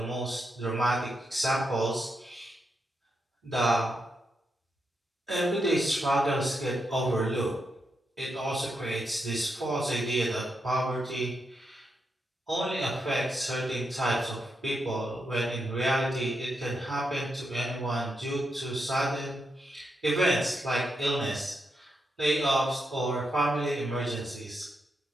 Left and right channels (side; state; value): both; normal; correlation 0.84